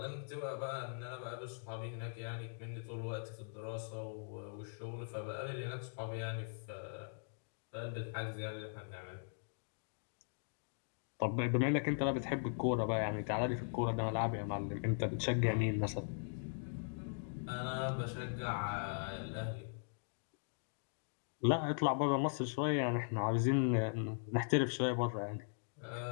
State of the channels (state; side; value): silent; right; digital silence